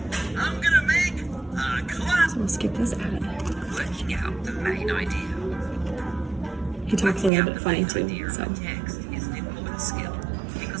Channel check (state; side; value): drops out; left; at 7.3 s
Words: So we'll skip this ad. Working out the main idea. He talks a little bit funny too, so. Text is an important skill